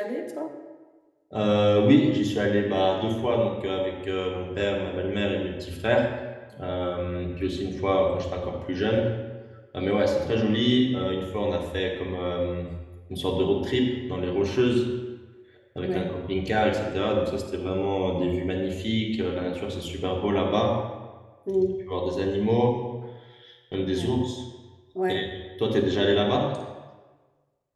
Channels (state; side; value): identical; both; correlation 1.00